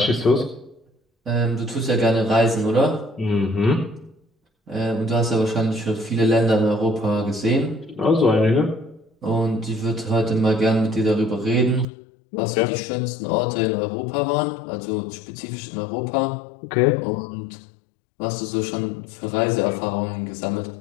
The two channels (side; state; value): right; drops out; at 11.9 s